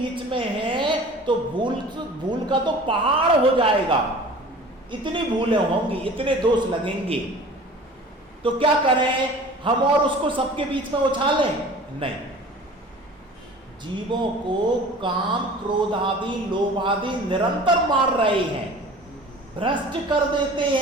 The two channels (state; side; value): normal; both; correlation 0.43